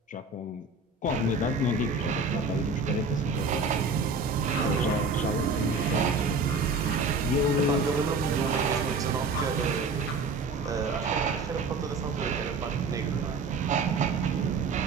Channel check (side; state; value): left; quieter; 3.6 dB